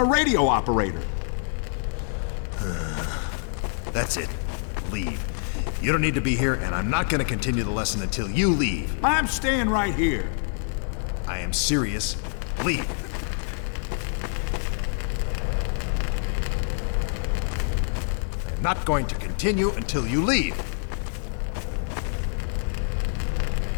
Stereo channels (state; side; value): silent; right; digital silence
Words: radio operator. That's it. Leave. You don't need to be here, and I'm not gonna continue the lesson until you leave. I'm staying right here. I am serious. Leave. I'm not going to continue until you leave.